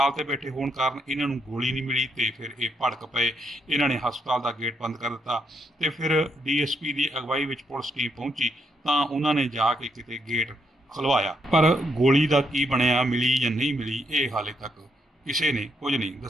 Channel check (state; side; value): normal; both; correlation 0.77